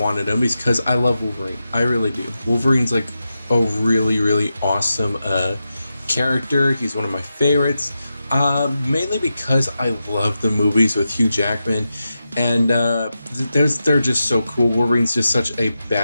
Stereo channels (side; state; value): both; inverted; correlation -0.90